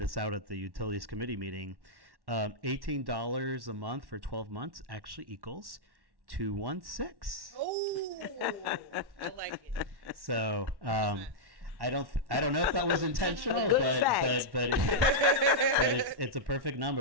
out at the Utilities Committee meeting. $18 a month for 12 months actually equals $216. Oh, I like it. So I don't know if that was intentional, but it's a perfect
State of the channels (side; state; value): left; late; 1.1 ms